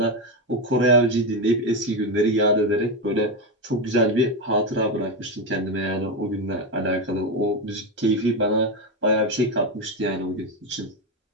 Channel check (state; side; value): normal; both; correlation 0.11